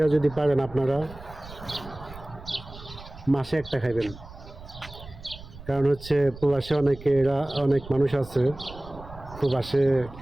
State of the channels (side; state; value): right; noise; rumble, 16 dB below the sound